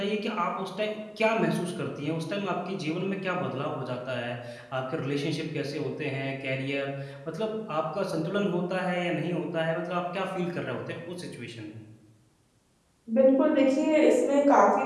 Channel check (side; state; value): both; identical; correlation 1.00